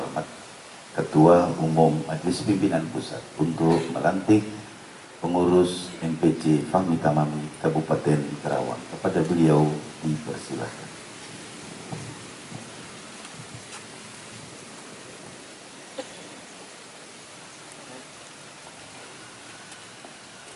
Ketua Umum Majelis Pimpinan Pusat untuk melantik pengurus MPC Fahmi Tamami Kabupaten Karawang, kepada beliau dipersilakan.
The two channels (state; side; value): identical; both; correlation 1.00